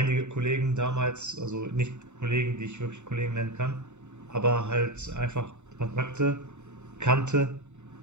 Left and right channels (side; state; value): left; late; 0.83 ms